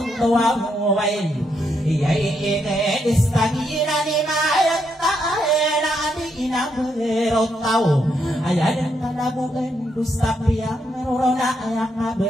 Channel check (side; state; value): both; normal; correlation 0.78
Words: tua muwain Iyay ine istagina ni mayat taena adi na berotau aya dan kalabuan dusta piang merona aya